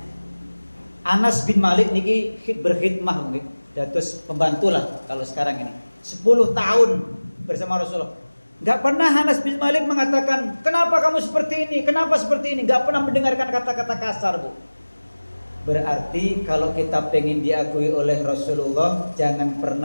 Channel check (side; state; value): both; inverted; correlation -1.00